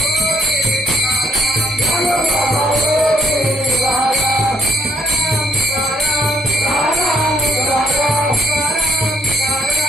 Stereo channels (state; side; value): normal; both; correlation 0.68